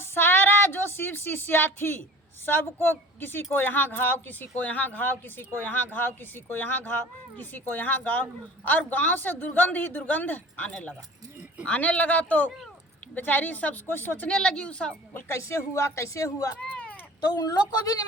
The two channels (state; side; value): normal; both; correlation 0.43